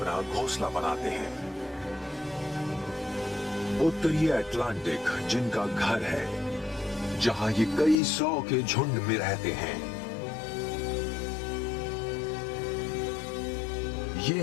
घोंसला बनाते हैं। उत्तरी अटलांटिक जिनका घर है, जहां ये कई सौ के झुंड में रहते हैं। ये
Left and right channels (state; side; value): drops out; right; at 8.0 s